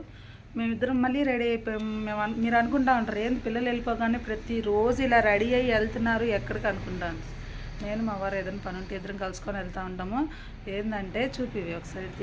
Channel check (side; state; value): both; identical; correlation 1.00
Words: మేమిద్దరం మళ్ళీ రెడీ అయిపోయాం. మీరు అనుకుంటా ఉంటారు, ఏంది పిల్లలు వెళ్ళిపోగానే ప్రతిరోజు ఇలా రెడీ అయ్యి వెళ్తున్నారు ఎక్కడికి అనుకుంటాను. నేను మా వారు ఏదైనా పని ఉంటే ఇద్దరం కలుసుకొని వెళ్తూ ఉంటాము. ఏంటంటే చూపివి ఒకసారి